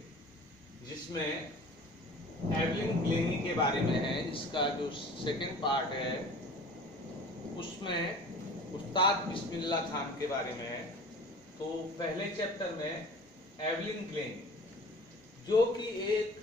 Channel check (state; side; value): normal; both; correlation 0.43